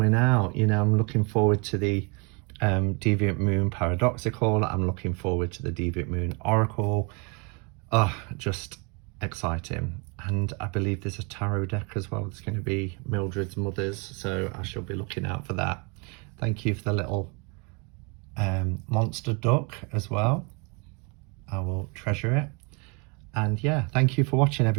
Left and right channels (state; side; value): quieter; left; 32.4 dB